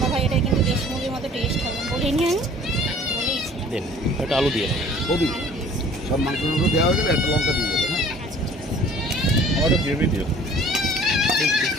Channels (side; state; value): both; normal; correlation 0.51